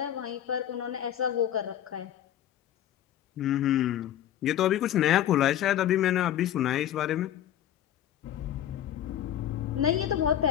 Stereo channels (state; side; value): quieter; right; 11.1 dB